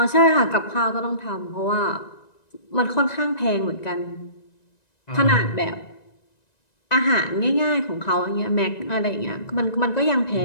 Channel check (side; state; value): right; late; 1.9 ms